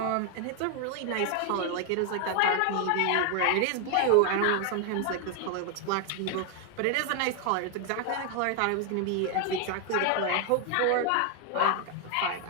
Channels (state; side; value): different; both; correlation 0.00